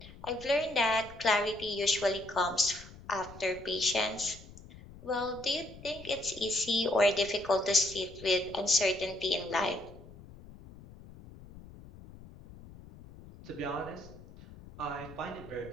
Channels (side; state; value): left; noise; rumble, 18 dB below the sound